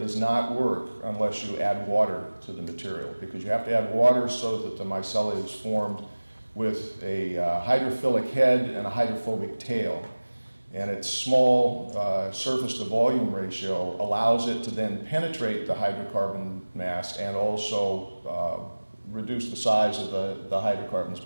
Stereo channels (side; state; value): both; inverted; correlation -1.00